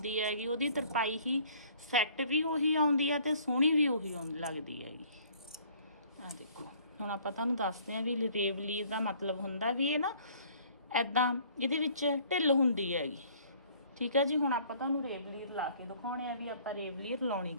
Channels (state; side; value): inverted; both; correlation -0.56